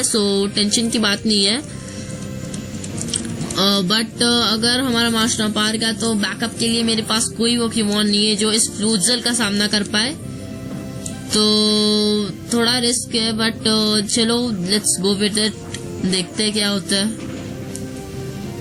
सो टेंशन की बात नहीं है। बट अगर हमारा मास्टॉर्म पार गया तो बैकअप के लिए मेरे पास कोई पोकेमॉन नहीं है जो इस फ्लूजल का सामना कर पाए, तो थोड़ा रिस्क है। बट चलो लेट्स गो विद इट, देखते हैं क्या होता है।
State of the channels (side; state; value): both; identical; correlation 1.00